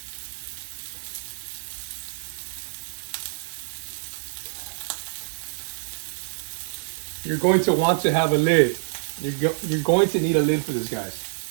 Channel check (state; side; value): silent; left; digital silence